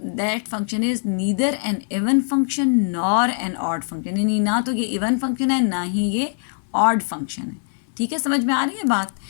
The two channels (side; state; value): right; silent; digital silence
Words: function is neither an even function nor an odd function, यानी ना तो ये इवन फंक्शन है ना ही ये ऑड फंक्शन है। ठीक है, समझ में आ रही है बात?